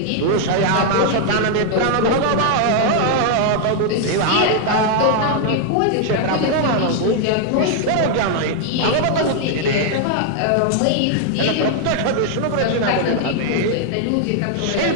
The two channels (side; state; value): both; different; correlation 0.00